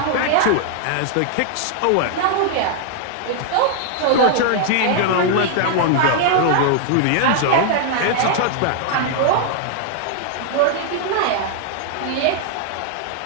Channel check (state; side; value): different; both; correlation 0.00